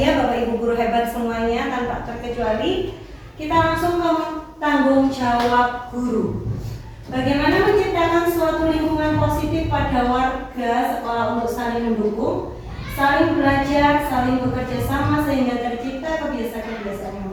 Bapak Ibu guru hebat semuanya tanpa terkecuali. Kita langsung ke tanggung jawab guru. Bagaimana menciptakan suatu lingkungan positif pada warga sekolah untuk saling mendukung, saling belajar, saling bekerja sama sehingga tercipta kebiasaan-kebiasaan yang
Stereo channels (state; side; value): identical; both; correlation 1.00